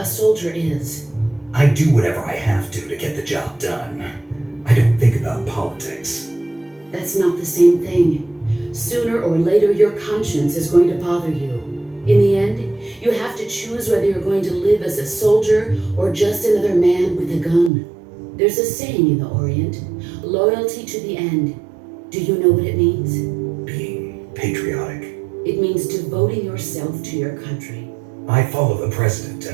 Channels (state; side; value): drops out; left; at 17.7 s